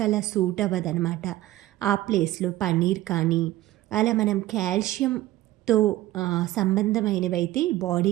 అలా సూట్ అవ్వదనమాట. ఆ ప్లేస్లో పన్నీర్ కానీ అలా మనం కాల్షియంతో సంబంధమైనవైతే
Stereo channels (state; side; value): quieter; left; 15.9 dB